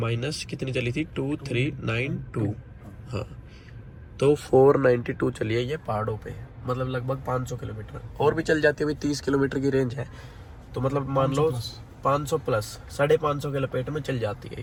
कितनी चली थी 2392, हाँ, तो 492 चली है ये पहाड़ों पे, मतलब लगभग 500 किलोमीटर। और भी चल जाती है भाई, 30 किलोमीटर की रेंज है, तो मतलब मान लो 500 प्लस 550 के लपेट में चल जाती है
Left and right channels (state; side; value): identical; both; correlation 1.00